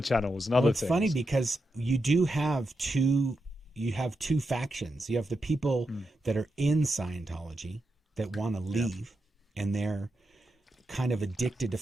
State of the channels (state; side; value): normal; both; correlation 0.86